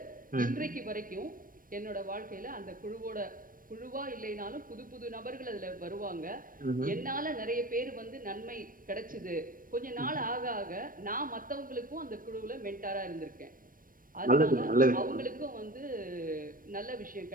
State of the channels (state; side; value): late; left; 0.40 ms